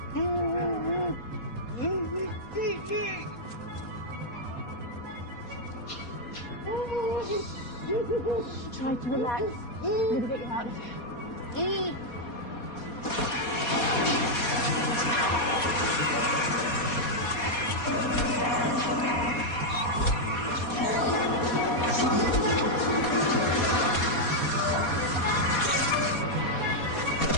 Try to relax. I'm gonna get you out of here.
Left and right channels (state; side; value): late; right; 4.2 ms